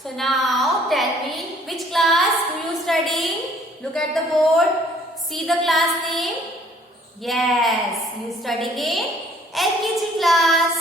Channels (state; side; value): normal; both; correlation 0.59